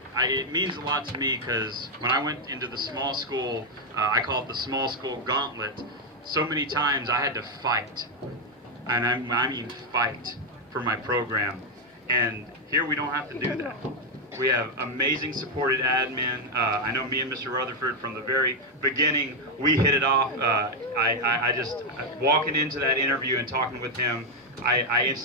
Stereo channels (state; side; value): normal; both; correlation 0.03